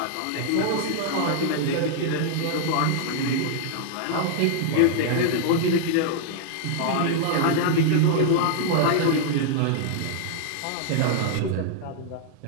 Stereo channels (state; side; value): different; both; correlation -0.01